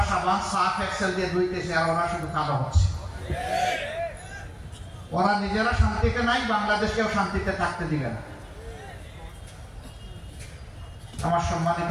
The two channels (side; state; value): both; identical; correlation 1.00